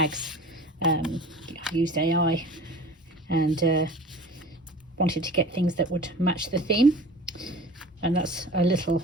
I used AI and wanted to get things that would match the theme, and that's a little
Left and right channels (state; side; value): normal; both; correlation 0.40